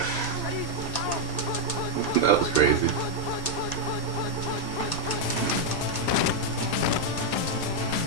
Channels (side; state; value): right; late; 1.8 ms